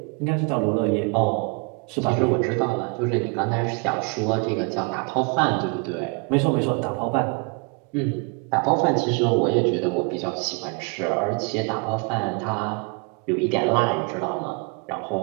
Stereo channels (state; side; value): quieter; left; 32.6 dB